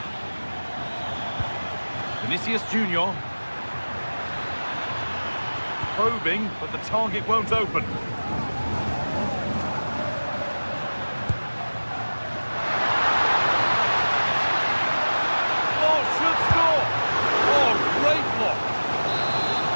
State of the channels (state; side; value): inverted; both; correlation -1.00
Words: Vinicius Junior. Probing, but the target won't open.